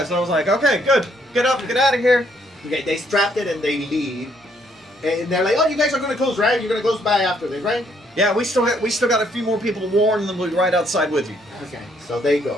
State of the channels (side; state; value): both; normal; correlation 0.69